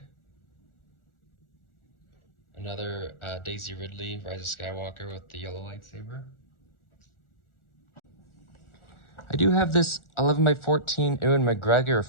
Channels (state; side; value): late; right; 1.4 ms